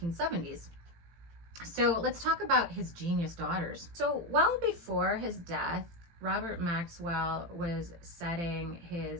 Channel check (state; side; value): late; left; 18 ms